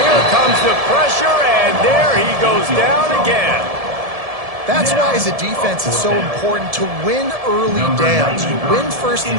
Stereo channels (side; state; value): left; late; 1.7 ms